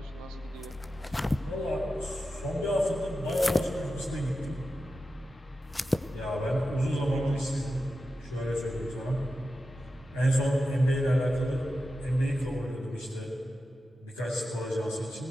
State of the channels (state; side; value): normal; both; correlation 0.91